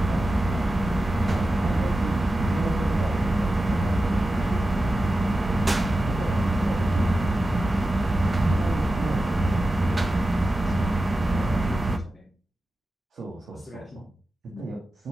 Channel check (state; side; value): normal; both; correlation 0.93